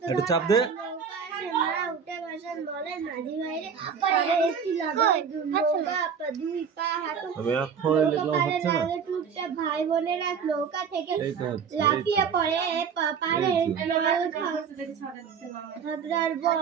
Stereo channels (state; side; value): quieter; left; 6.7 dB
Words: একটু চাপ দে। নৌকা আসে, মা উঠে বসেন, বলেন মাঝি ভাইরে পরে একটি লাগাই নৌকা দুই পা হাঁটু। আমি এখন লিখলাম, হচ্ছে না? ভাই বোনেরা নৌকা থেকে এই তো হচ্ছে, লাফিয়ে পড়ে পারে হাবড়ার